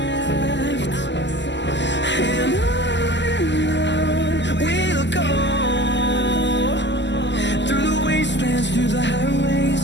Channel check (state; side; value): late; right; 0.52 ms